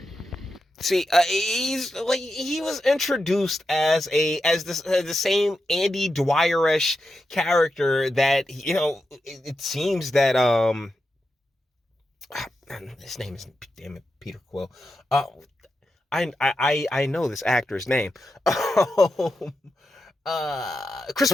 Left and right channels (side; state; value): both; normal; correlation 0.88